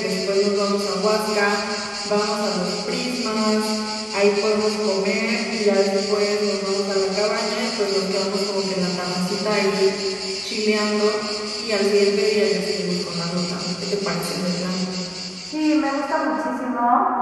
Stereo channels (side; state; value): both; identical; correlation 1.00